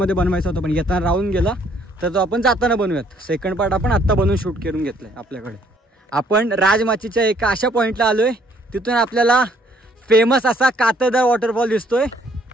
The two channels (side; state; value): both; normal; correlation 0.64